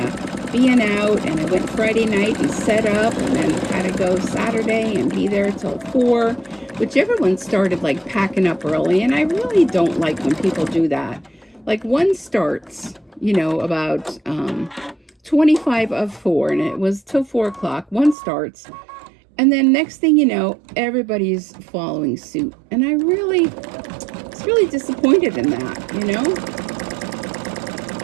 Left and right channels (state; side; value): drops out; left; at 18.2 s